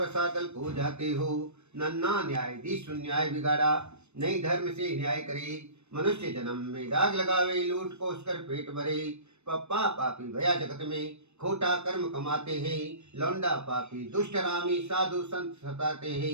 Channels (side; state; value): left; late; 0.81 ms